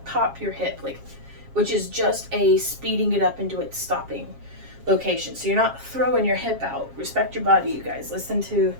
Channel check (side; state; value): left; late; 7.4 ms